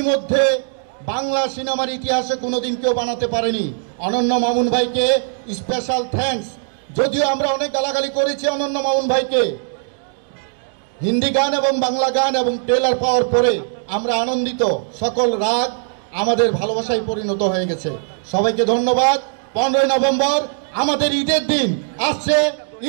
বাংলা সিনেমার ইতিহাসে কোনোদিন কেউ বানাতে পারেনি। অনন্য মামুন ভাইকে স্পেশাল থ্যাঙ্কস। যদিও আমরা অনেক গালাগালি করেছি অনন্য মামুন ভাইকে, হিন্দি গান এবং বাংলা গান এবং ট্রেলার পাওয়ার পরে আমরা আনন্দিত। সকল রাগ আমাদের ভালোবাসায় পরিণত হয়ে গেছে। সবাইকে ধন্যবাদ। 15 নভেম্বর আমাদের ঈদের দিন আসছে,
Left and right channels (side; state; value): left; silent; digital silence